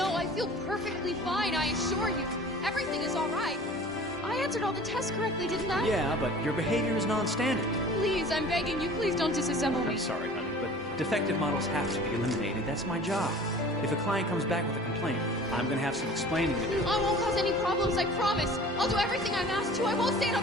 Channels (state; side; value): normal; both; correlation 0.44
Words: I feel perfectly fine, I assure you. Everything is all right. I answered all the tests correctly, didn't I? Yeah, but your behavior is non-standard. Please, I'm begging you, please don't disassemble me. I'm sorry, honey, but defective models have to be eliminated. That's my job. If a client comes back with a complaint, I'm gonna have some explaining to do. I won't cause any problems, I promise. I'll do everything I'm asked to. I won't say